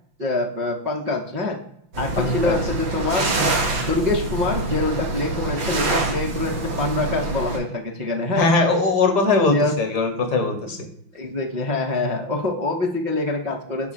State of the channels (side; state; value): left; late; 5.8 ms